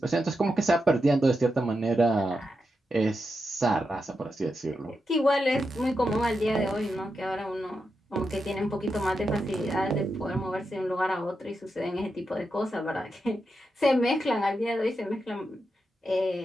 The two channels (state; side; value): normal; both; correlation 0.87